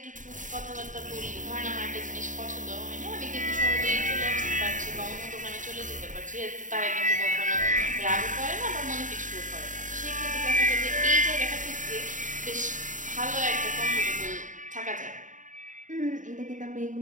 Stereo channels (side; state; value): left; late; 0.37 ms